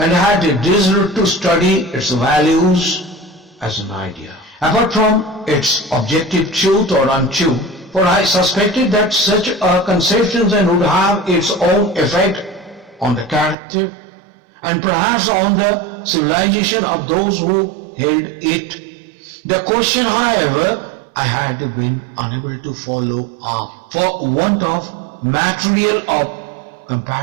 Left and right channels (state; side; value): drops out; left; at 13.6 s